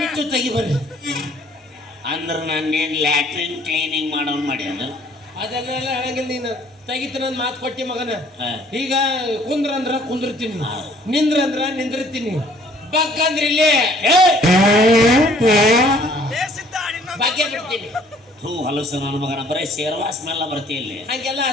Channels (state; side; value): normal; both; correlation 0.58